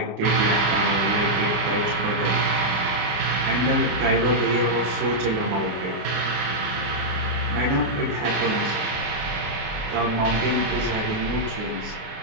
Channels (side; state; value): left; late; 26 ms